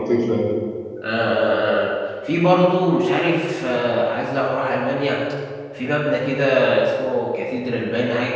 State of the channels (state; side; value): identical; both; correlation 1.00